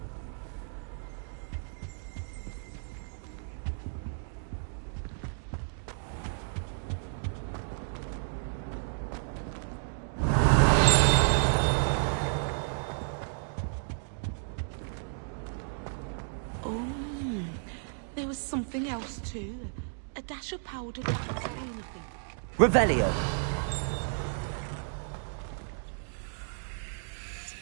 There was something else too. A dash of powdered wax green, I think. Revelio.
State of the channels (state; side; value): silent; left; digital silence